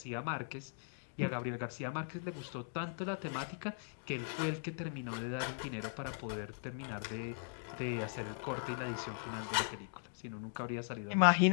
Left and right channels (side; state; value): right; silent; digital silence